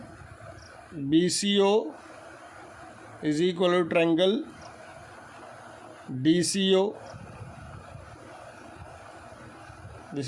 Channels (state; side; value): identical; both; correlation 1.00